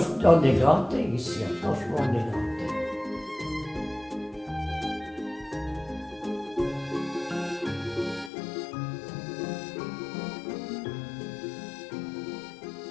on est gâtés ici, franchement, on est gâtés.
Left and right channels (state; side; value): drops out; right; at 8.3 s